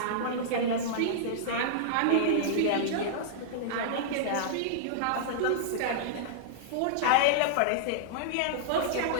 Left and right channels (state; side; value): different; both; correlation -0.02